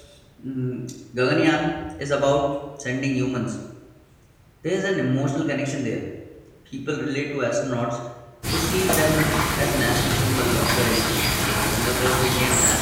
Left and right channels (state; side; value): identical; both; correlation 1.00